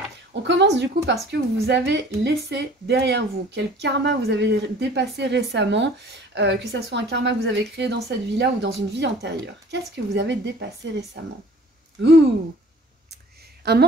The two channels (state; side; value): normal; both; correlation 0.49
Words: on commence du coup parce que vous avez laissé derrière vous. Quel karma vous avez dépassé récemment, que ce soit un karma que vous avez créé dans cette vie-là ou dans une vie antérieure. Qu'est-ce que vous avez dépassé récemment? Ouh! Un